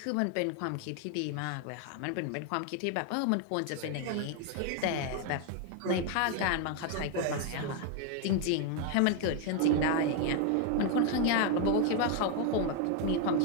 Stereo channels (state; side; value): different; both; correlation 0.01